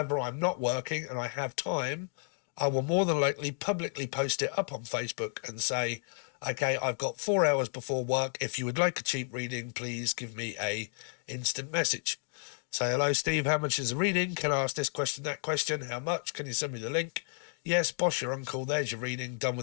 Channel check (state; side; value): silent; right; 56 dB below the other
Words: I'm not working and I have time, I will more than likely publicly post it up on Facebook and say, okay, I've got 4 hours before work. If you would like a cheap reading, please give me a instant message. Say, hello, Steve, how much is a reading? Can I ask this question, that question? How much? Can you send me the link? Yes, boss, your uncle, there's your reading, done